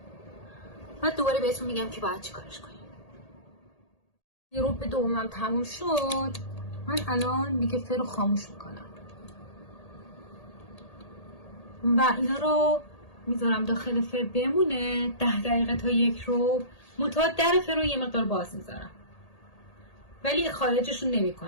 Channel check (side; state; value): right; late; 1.8 ms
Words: بعد دوباره بهتون میگم که باید چی کارش کنیم. 1 ربع دومم تموم شد. من الان دیگه فر رو خاموش میکنم و اینا رو میذارم داخل فر بمونه 10 دقیقه تا 1 ربع. منتها در فر رو یه مقدار باز میذارم ولی خارجشون نمی